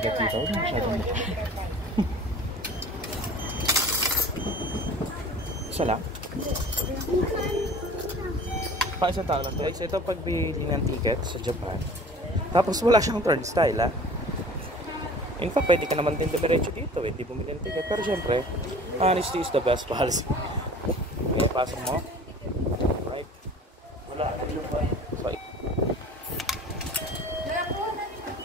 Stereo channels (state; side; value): normal; both; correlation 0.44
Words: dito. Masyadong isa lang? Isang tao lang. Guys, ito ang pagbili ng ticket sa Japan. Tapos wala siyang turnstile, ha? In fact, pwede ka naman din diretso dito, hindi bumili ng ticket. Pero syempre, honesty is the best policy. Okay, pasok mo. Right? Wala. Sorry.